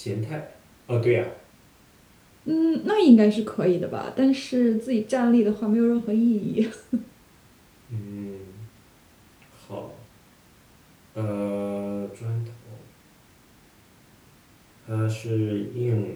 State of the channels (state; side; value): identical; both; correlation 1.00